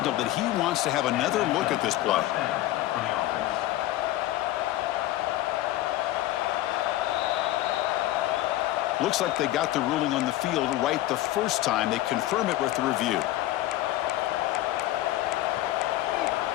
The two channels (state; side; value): quieter; right; 15.4 dB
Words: that he wants to have another look at this play. Looks like they got the ruling on the field right the first time. They confirm it with the review.